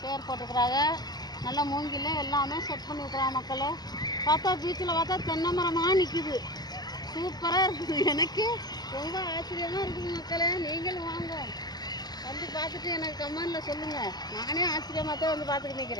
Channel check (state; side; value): late; right; 0.20 ms